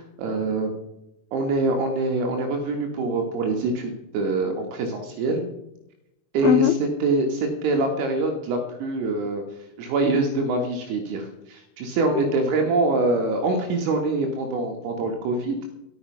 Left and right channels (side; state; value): left; late; 23 ms